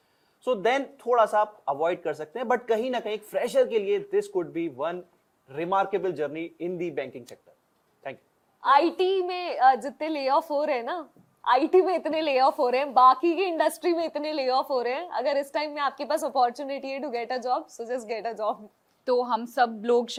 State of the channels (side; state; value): both; identical; correlation 1.00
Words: so then थोड़ा सा आप अवॉइड कर सकते हैं। बट कहीं ना कहीं फ्रेशर के लिए this could be one remarkable journey in the banking sector. Thank you. IT में जितने ले ऑफ हो रहे हैं ना, आईटी में इतने ले ऑफ हो रहे हैं, बाकी की इंडस्ट्री में इतने ले ऑफ हो रहे हैं, अगर इस टाइम में आपके पास अपॉर्चुनिटी है to get a job, so just get a job. तो हम सब लोग